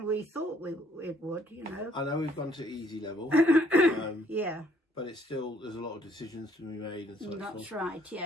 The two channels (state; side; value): normal; both; correlation 0.65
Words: we thought it would, you know. I know we've gone to easy level, Yeah, but it's still, there's a lot of decisions to be made and such. that's right,